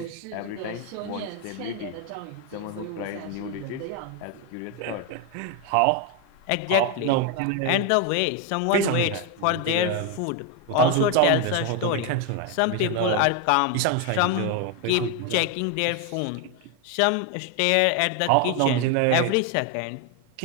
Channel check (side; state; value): both; different; correlation 0.01